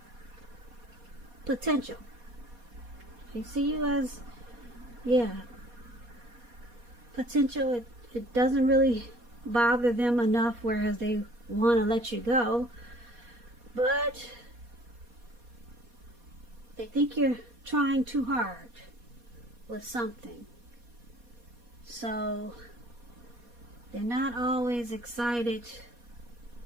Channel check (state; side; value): late; left; 4.2 ms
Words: potential. They see you as, potential. It doesn't really bother them enough, whereas they want to let you go. But they think you're trying too hard with something. So they're not always excited.